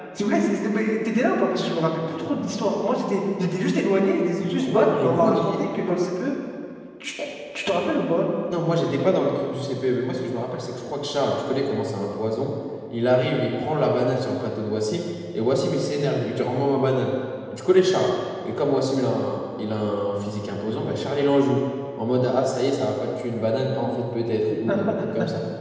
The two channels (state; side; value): identical; both; correlation 1.00